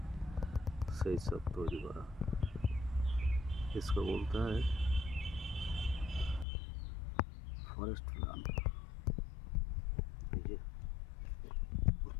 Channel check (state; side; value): drops out; right; at 6.5 s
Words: সেই সব তৈরি করা। इसको বলতে হয় ফরেস্ট প্ল্যান। এই যে